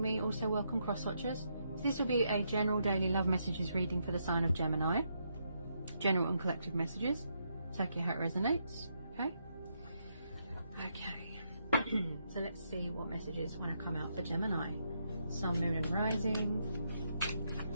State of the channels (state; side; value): inverted; both; correlation -0.79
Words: me. Also welcome cross watchers. This will be a general daily love messages reading for the sign of Gemini. General and collective messages. Take it how it resonates. Okay. So let's see what messages want to come out for Gemini. Sun, Moon and Rising.